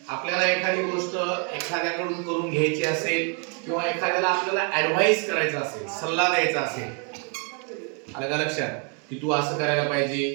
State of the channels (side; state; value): left; quieter; 37.9 dB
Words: आपल्याला एखादी गोष्ट एखाद्याकडून करून घ्यायची असेल किंवा एखाद्याला आपल्याला ऍडवाइस करायचा असेल, सल्ला द्यायचा असेल, आलं का लक्षात की तू असं करायला